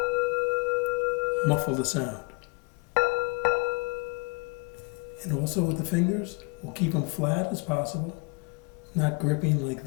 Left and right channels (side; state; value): right; quieter; 30.8 dB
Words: muffle the sound. And also with the fingers, we'll keep them flat as possible, not gripping like